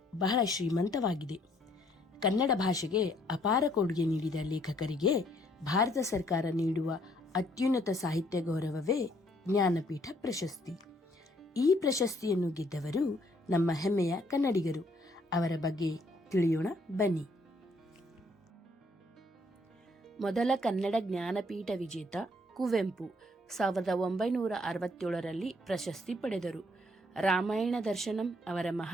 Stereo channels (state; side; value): normal; both; correlation 0.66